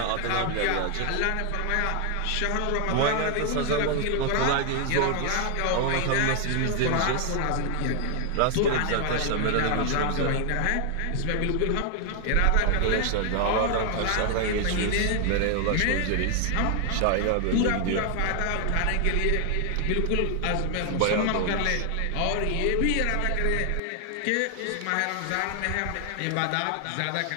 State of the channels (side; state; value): both; different; correlation 0.00